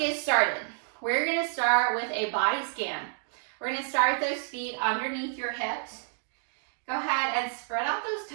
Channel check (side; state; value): left; silent; digital silence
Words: started. We're going to start with a body scan. We're going to start with those feet underneath your hips. Go ahead and spread out